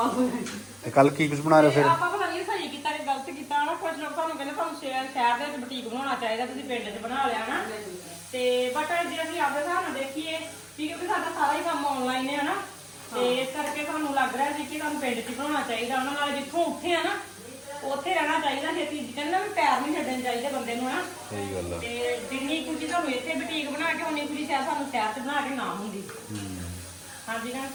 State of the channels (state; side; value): identical; both; correlation 1.00